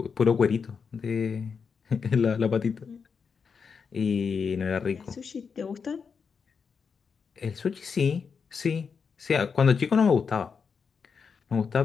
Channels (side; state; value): right; quieter; 5.9 dB